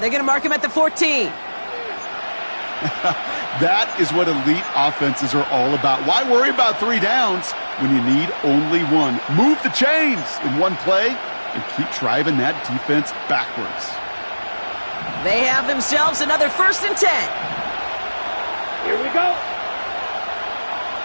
going to mark him at the 14. That is what elite offenses are all about. Why worry about 3 downs when you need only 1? Move the chains in one play and keep driving that defense backwards. They have themselves another 1st and 10. Here we go.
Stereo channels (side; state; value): both; inverted; correlation -1.00